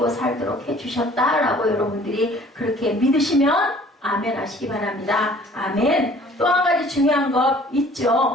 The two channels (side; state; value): both; normal; correlation 0.52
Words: 살도록 해주셨다라고 여러분들이 그렇게 믿으시면 아멘 하시기 바랍니다. 아멘. 또 한 가지 중요한 것